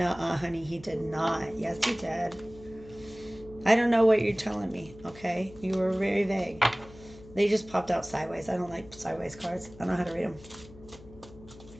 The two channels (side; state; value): left; noise; hum, 20 dB below the sound